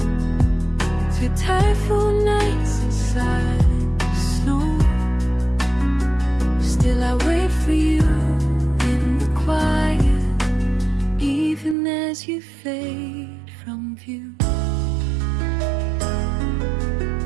Through typhoon nights and silent snow, still I wait for you in the quiet, even as you fade from view.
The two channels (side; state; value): left; drops out; at 11.8 s